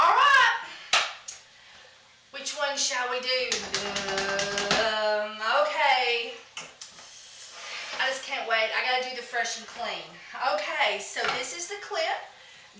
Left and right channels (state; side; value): identical; both; correlation 1.00